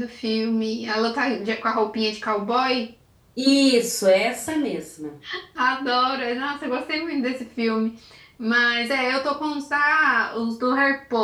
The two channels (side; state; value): both; identical; correlation 1.00